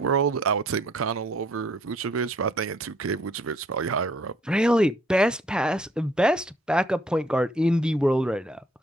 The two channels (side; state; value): both; normal; correlation 0.63